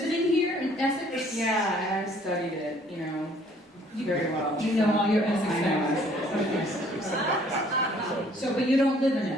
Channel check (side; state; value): both; normal; correlation 0.59